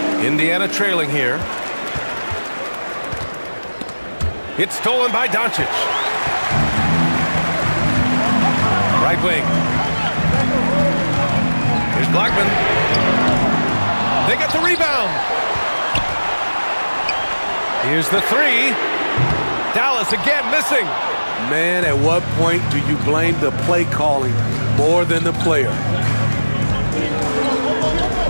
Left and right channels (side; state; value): both; inverted; correlation -1.00